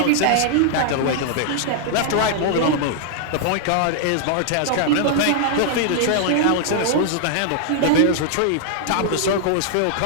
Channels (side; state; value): both; different; correlation -0.01